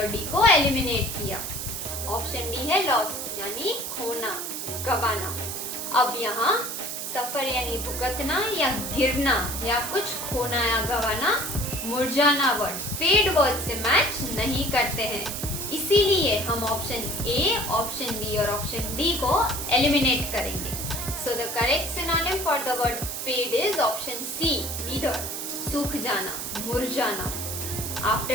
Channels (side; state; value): right; noise; hiss, 5 dB below the sound